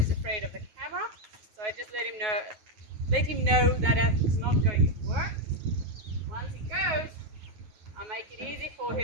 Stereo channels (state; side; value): late; left; 9.4 ms